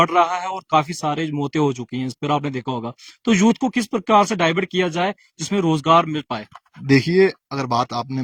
रहा है और काफी सारे मौतें हो चुकी हैं, इस पर आपने देखा होगा। तो यूथ को किस प्रकार से डाइवर्ट किया जाए जिसमें रोजगार मिल पाए? देखिए अगर बात आपने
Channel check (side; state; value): both; identical; correlation 1.00